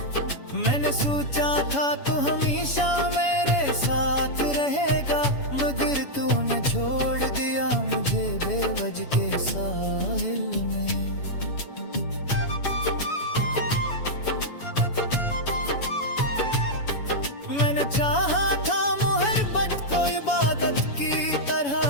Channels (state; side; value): late; right; 7.1 ms